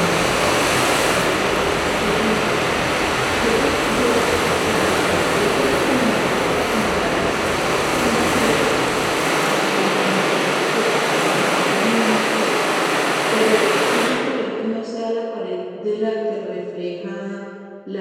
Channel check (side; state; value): both; identical; correlation 1.00